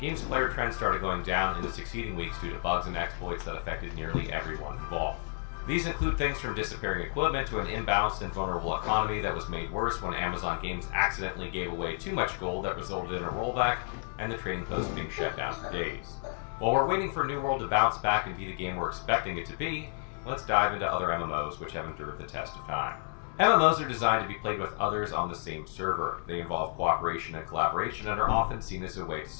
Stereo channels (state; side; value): silent; right; 57 dB below the other